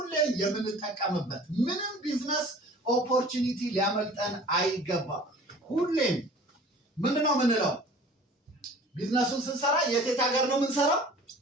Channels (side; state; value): both; normal; correlation 0.46